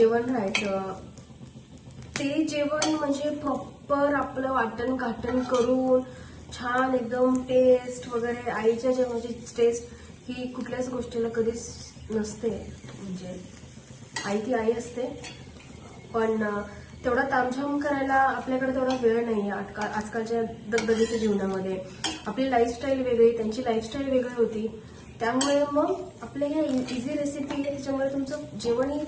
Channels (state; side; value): identical; both; correlation 1.00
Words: राहायचं ते जेवण म्हणजे प्रॉपर आपलं वाटण घाटण करून छान एकदम टेस्ट वगैरे. आईच्या जेवणाची टेस्ट ही कुठल्याच गोष्टीला कधीच नसते. म्हणजे आई ती आई असते, पण तेवढा तामझाम करायला आपल्याकडे तेवढा वेळ नाही आहे आजकालच्या दगदगीच्या जीवनामध्ये. आपली लाईफस्टाईल वेगळी, त्यांची लाईफस्टाईल वेगळी होती. त्यामुळे मग आपल्या ह्या इझी रेसिपी आहे, त्याच्यामुळे तुमचं जेवणही